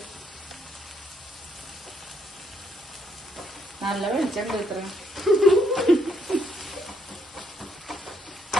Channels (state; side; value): normal; both; correlation 0.74